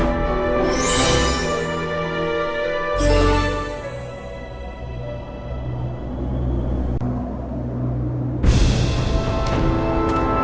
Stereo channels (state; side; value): identical; both; correlation 1.00